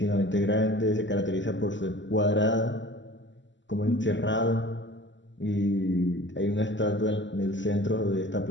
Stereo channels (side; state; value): right; late; 0.54 ms